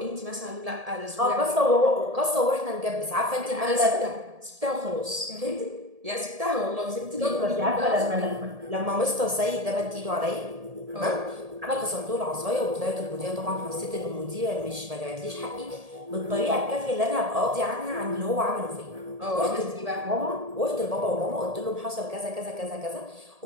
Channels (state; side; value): late; left; 1.7 ms